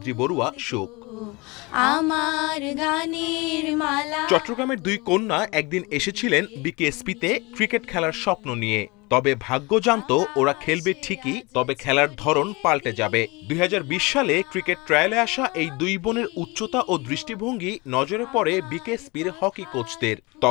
বড়ুয়া সুখ। আমার গানের মালা। চট্টগ্রামের দুই কন্যা একদিন এসেছিলেন বিকেএসপিতে ক্রিকেট খেলার স্বপ্ন নিয়ে। তবে ভাগ্য জানতো ওরা খেলবে ঠিকই, তবে খেলার ধরন পাল্টে যাবে। 2020 সালে ক্রিকেট ট্রায়ালে আসা এই দুই বোনের উচ্চতা ও দৃষ্টিভঙ্গি নজরে পড়ে বিকেএসপির হকি কোচদের।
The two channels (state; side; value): quieter; right; 25.6 dB